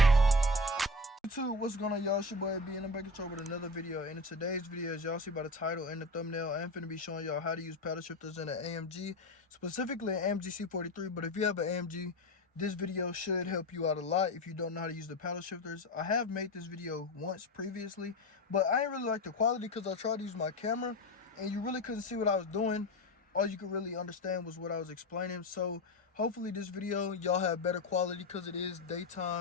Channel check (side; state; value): both; normal; correlation 0.24